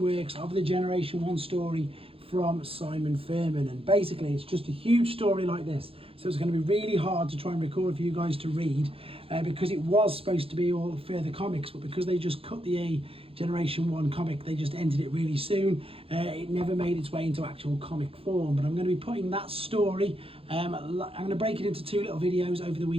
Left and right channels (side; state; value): left; late; 0.27 ms